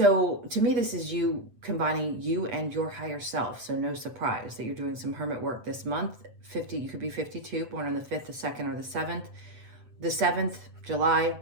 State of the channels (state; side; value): late; left; 8.0 ms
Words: to me, this is you combining you and your higher self. So no surprise that you're doing some hermit work this month. 50, you could be 52, born on the 5th, the 2nd, or the 7th. The 7th, July,